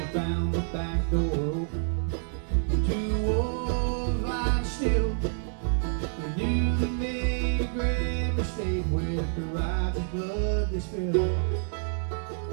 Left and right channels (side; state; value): left; silent; digital silence